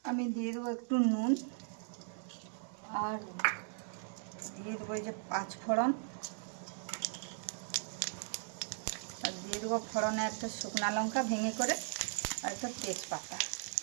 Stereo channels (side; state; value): left; silent; digital silence